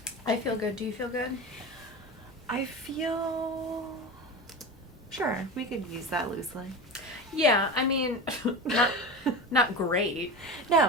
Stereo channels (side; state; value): both; normal; correlation 0.26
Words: I feel good. Do you feel good? I feel... Sure, we could use that loosely. Yeah, I mean, not great.